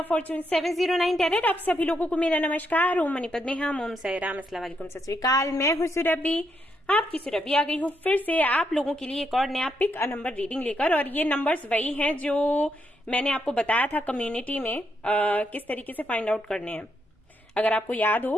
fortune 709 tarot. आप सभी लोगों को मेरा नमस्कार। ओम मणिपत में हम ओम साई राम, अस्सलाम वालेकुम, सत श्री अकाल। मैं हूं सुरभि, आपकी सुरभि आ गई हूं फिर से आप लोगों के लिए एक और नया पिक अ नंबर रीडिंग लेकर। और ये नंबर्स वही हैं जो मैंने आपको बताया था कम्युनिटी में किस तरीके से फाइंड आउट करने हैं। अगर आपको याद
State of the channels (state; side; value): normal; both; correlation 0.79